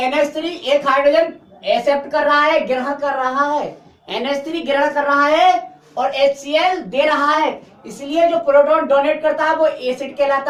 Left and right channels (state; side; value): identical; both; correlation 1.00